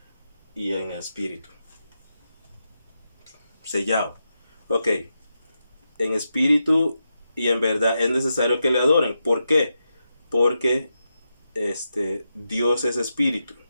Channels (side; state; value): both; inverted; correlation -0.87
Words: y en espíritu. Sellado. Ok. En espíritu y en verdad es necesario que le adoren. ¿Por qué? Porque Dios es espíritu.